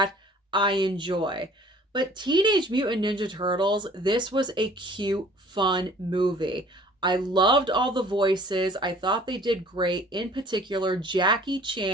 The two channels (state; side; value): normal; both; correlation 0.52